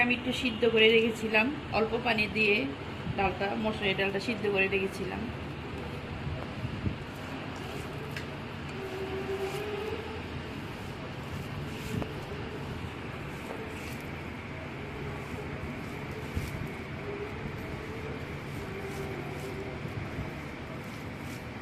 আমি একটু সিদ্ধ করে রেখেছিলাম অল্প পানি দিয়ে। মসুরের ডালটা সিদ্ধ করে রেখেছিলাম।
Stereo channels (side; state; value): both; identical; correlation 1.00